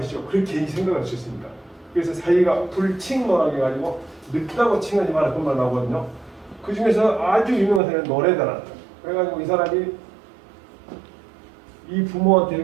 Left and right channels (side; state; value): left; drops out; at 7.8 s